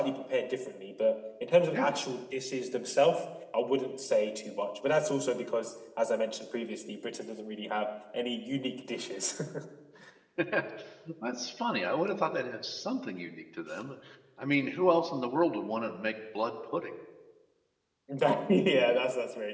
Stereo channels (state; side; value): identical; both; correlation 1.00